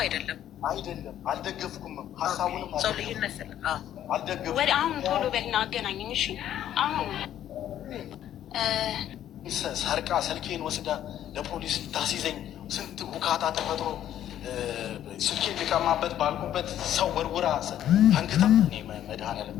አይደለም። አልደገፍኩም። ሀሳቡንም ሰው ልዩነት አልደገፍኩም። ወደ አሁን ቶሎ በልና አገናኘኝ። እሺ አሁን ሰርቃ ስልኬን ወስዳ ለፖሊስ ታስይዘኝ ስንት ቡካታ ተፈጥሮ ስልኬን ሊቀማበት ባልኩበት ሰው ወርውራ አንግታ እኔ መድኃኒዓለም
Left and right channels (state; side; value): quieter; right; 11.3 dB